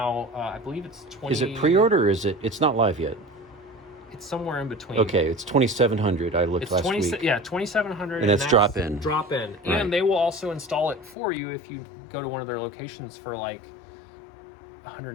I believe it's 20. Is it pre-order or it's not live yet? It's somewhere in between. Okay, it's 2,700. I looked last week. Yeah, 2,700. And that's drop in. Drop in. And they will also install it for you if you go to one of their locations for like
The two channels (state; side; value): drops out; right; at 11.2 s